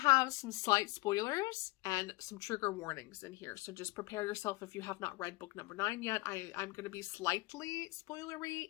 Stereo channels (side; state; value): right; quieter; 21.3 dB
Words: some slight spoilers and some trigger warnings in here. So just prepare yourself if you have not read book number 9 yet. I'm going to be slightly spoilery